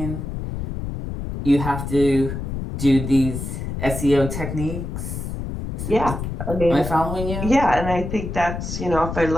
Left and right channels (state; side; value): noise; left; rumble, 5 dB below the sound